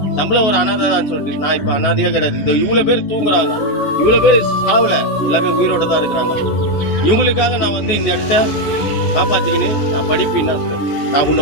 நம்மள ஒரு அனாதை தான் சொல்லிட்டு நான் இப்ப அனாதையே கிடையாது. இந்த இவ்வளவு பேர் தூங்குறாங்க, இவ்வளவு பேர் சாவல, எல்லாமே உயிரோட தான் இருக்கிறாங்க. இவங்களுக்காக நான் வந்து இந்த இடத்த காப்பாத்திக்கின்னு நான் படிப்பின்னா சொல்லுவேன். நான்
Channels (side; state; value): right; late; 14 ms